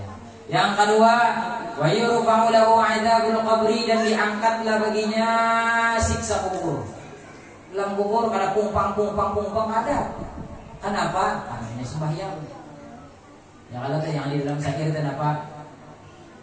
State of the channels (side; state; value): both; identical; correlation 1.00